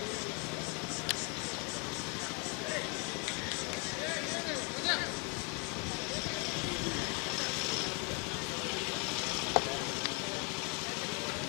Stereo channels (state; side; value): quieter; right; 34.5 dB